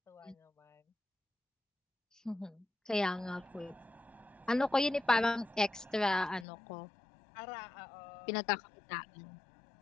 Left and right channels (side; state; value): right; drops out; at 6.5 s